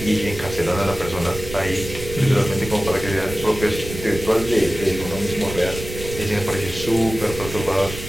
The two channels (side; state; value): right; noise; rumble, 10 dB below the sound